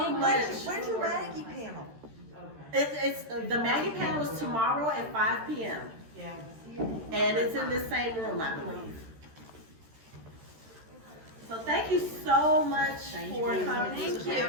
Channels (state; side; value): late; left; 13 ms